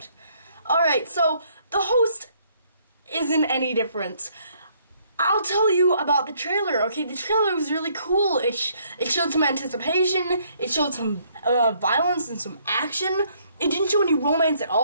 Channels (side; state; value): both; inverted; correlation -0.67